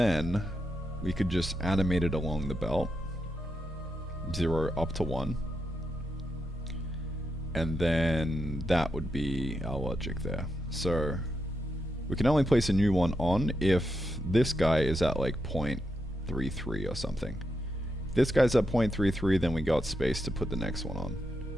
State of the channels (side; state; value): both; normal; correlation 0.85